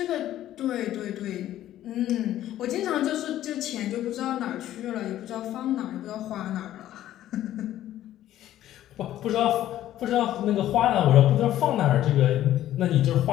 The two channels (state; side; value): quieter; right; 12.9 dB